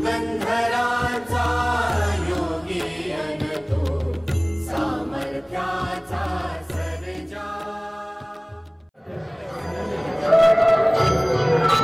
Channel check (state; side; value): identical; both; correlation 1.00